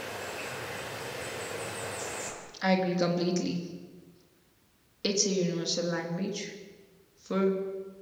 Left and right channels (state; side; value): identical; both; correlation 1.00